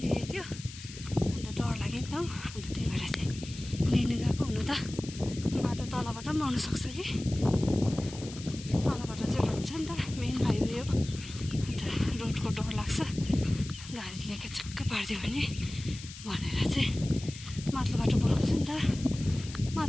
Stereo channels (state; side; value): noise; left; hiss, 14 dB below the sound